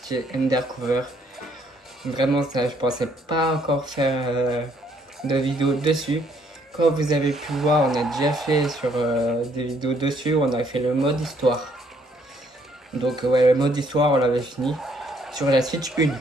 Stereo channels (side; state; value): both; normal; correlation 0.67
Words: Undercover. Vraiment ça, je pensais pas encore faire de vidéo dessus. Comme vous avez pu voir, on a déjà fait sur des vidéos dessus, on a fait le mode histoire. Donc ouais, le mode histoire on l'avait fini sur la Switch 1,